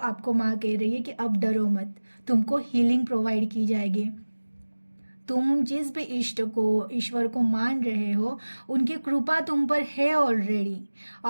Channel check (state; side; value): inverted; both; correlation -1.00